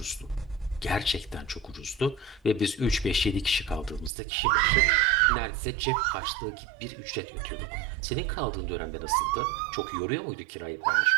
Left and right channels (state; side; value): drops out; left; at 4.1 s